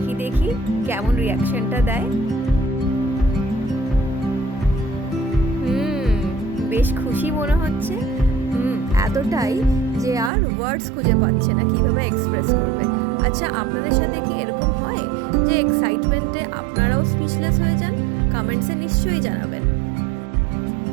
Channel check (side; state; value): left; drops out; at 10.3 s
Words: দেখি কেমন রিয়াকশনটা দেয়। বেশ খুশি মনে হচ্ছে। এতটাই যে আর ওয়ার্ডস খুঁজে পাচ্ছে না কিভাবে এক্সপ্রেস করবে। আচ্ছা, আপনাদের সাথে কি এরকম হয় যে এক্সাইটমেন্টে আপনারাও স্পিচলেস হয়ে যান? কমেন্টসে নিশ্চয়ই জানাবেন।